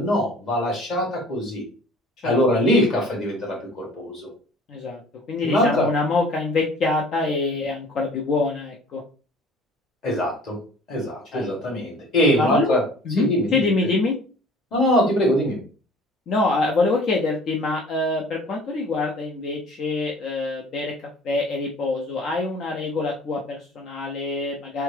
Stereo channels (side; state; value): both; normal; correlation 0.48